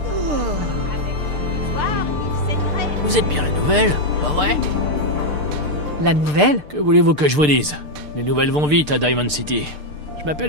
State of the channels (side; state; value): left; late; 6.7 ms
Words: avec le soir, il saignerait. Vous êtes bien la nouvelle, pas vrai? La nouvelle? Que voulez-vous que je vous dise? Les nouvelles vont vite à Diamond City. Je m'appelle